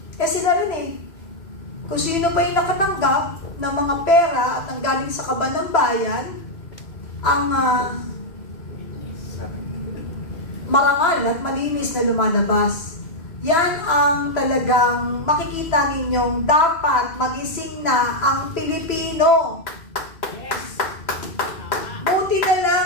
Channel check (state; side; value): late; right; 3.0 ms